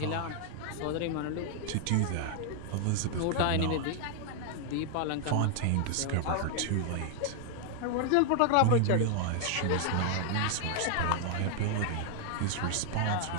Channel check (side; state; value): both; different; correlation 0.00